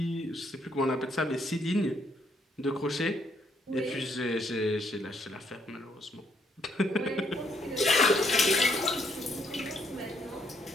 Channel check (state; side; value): normal; both; correlation 0.71